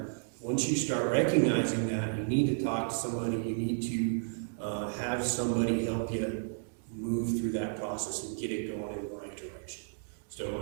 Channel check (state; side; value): silent; left; 56 dB below the other